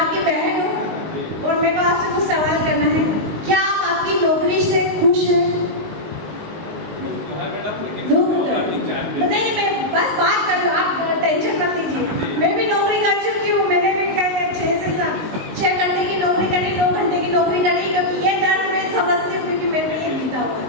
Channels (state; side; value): late; left; 19 ms